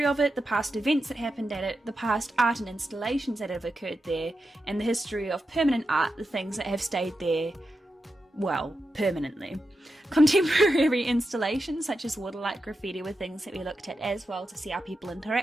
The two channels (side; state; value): both; normal; correlation 0.89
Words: of it, the past events that happened at it, the past art and installations that have occurred there, and the history of permanent art, the things that have stayed there, well, permanently. Contemporary installations such as waterlight graffiti were things that we looked at as well to see how people